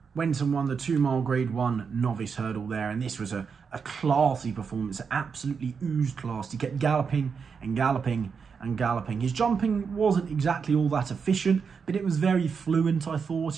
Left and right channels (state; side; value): quieter; left; 5.9 dB